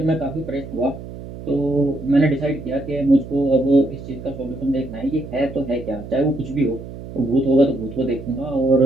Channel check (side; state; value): right; noise; hum, 12 dB below the sound